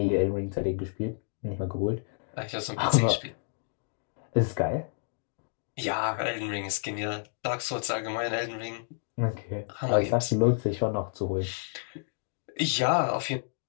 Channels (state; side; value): silent; right; digital silence